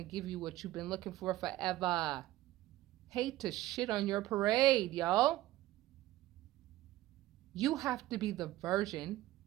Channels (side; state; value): left; quieter; 15.9 dB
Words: give you what you've been looking for forever. Hate to shit on your parade, y'all. You have to be the version